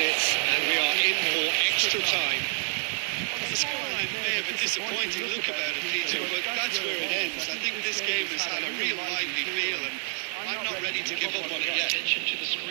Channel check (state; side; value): silent; left; 59 dB below the other